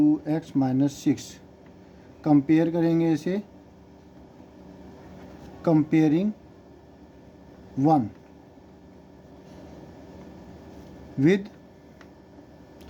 minus 6। Compare करेंगे इसे, comparing 1 with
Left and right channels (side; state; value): both; identical; correlation 1.00